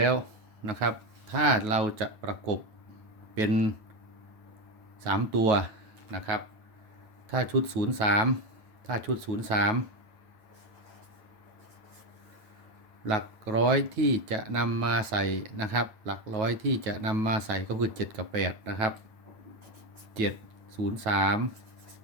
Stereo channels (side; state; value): left; late; 9.3 ms